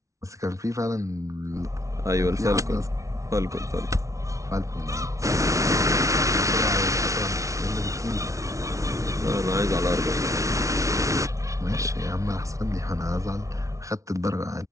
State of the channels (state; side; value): late; left; 0.15 ms